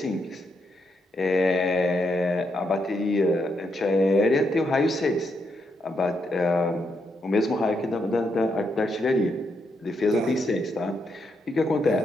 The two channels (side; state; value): both; normal; correlation 0.79